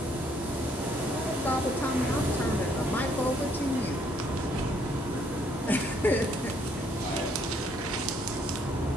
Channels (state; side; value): normal; both; correlation 0.67